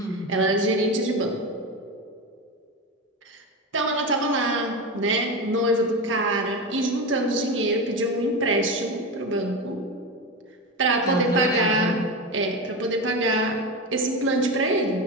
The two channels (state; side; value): normal; both; correlation 0.20